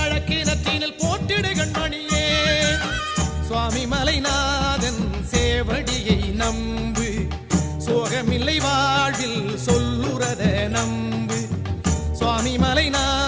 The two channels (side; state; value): both; identical; correlation 1.00